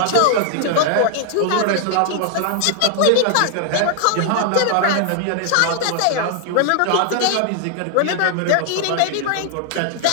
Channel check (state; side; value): different; both; correlation 0.00